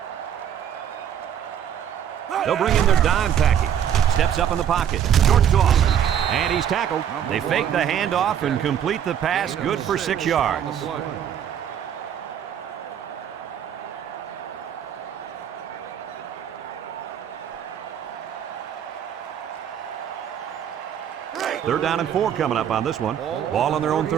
They'll bring in their dime package. Steps up in the pocket. Short toss. And he's tackled. They fake the handoff and complete the pass. Good for 6 yards. Third down and 4 coming up on this one. Ball on their own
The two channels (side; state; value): left; quieter; 9.4 dB